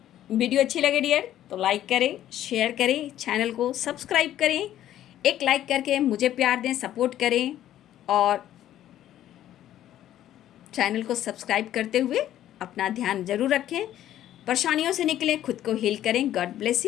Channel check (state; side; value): quieter; right; 12.2 dB